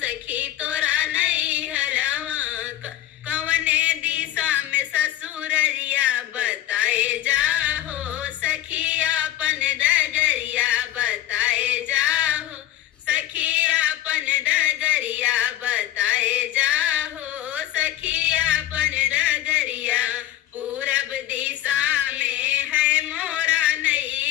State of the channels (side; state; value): right; quieter; 13.2 dB